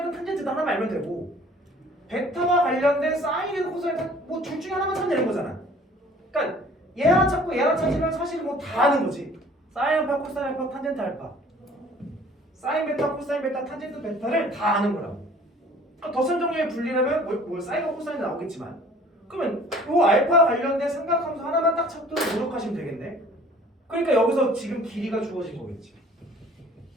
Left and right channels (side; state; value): both; normal; correlation 0.52